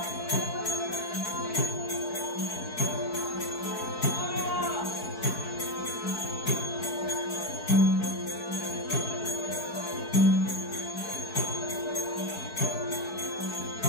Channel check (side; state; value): right; late; 4.6 ms